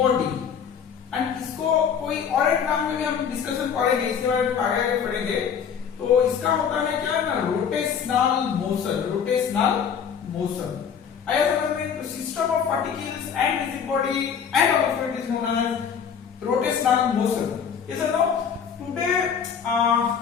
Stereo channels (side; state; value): right; quieter; 7.3 dB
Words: And इसको कोई और एक नाम में भी हम discussion करेंगे, इसके बारे में आगे पढ़ेंगे। तो इसका होता है क्या ना, रोटेशनल मोशन। रोटेशनल मोशन आया समझ में? तो system of particles and rigid body and of it is known as rotational motion. Yes और no? Today we